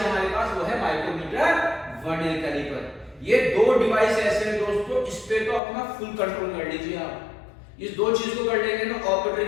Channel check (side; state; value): right; drops out; at 5.6 s